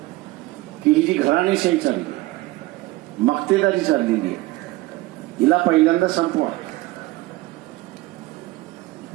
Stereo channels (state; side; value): quieter; left; 19.5 dB